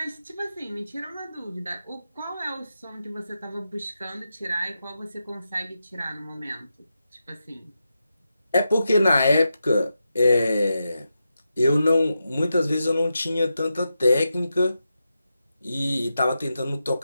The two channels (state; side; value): inverted; both; correlation -0.89